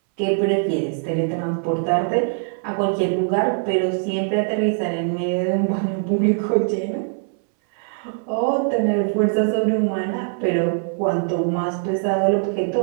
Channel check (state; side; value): silent; left; 62 dB below the other